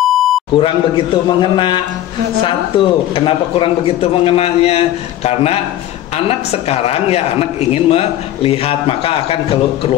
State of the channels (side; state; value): right; quieter; 12.8 dB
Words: Satu, kenapa kurang begitu mengenanya? Karena anak sekarang ya anak ingin melihat, maka akan